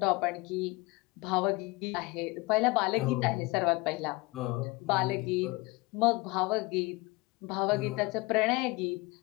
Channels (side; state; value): right; quieter; 23.6 dB